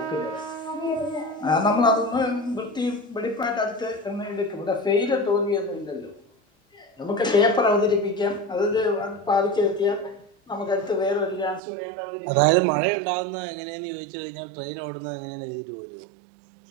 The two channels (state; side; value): drops out; left; at 11.6 s